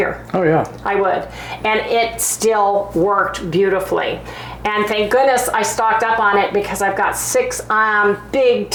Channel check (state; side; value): identical; both; correlation 1.00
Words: Oh yeah. I would. And it still worked beautifully. And thank goodness I stocked up on it, because I've got 6 big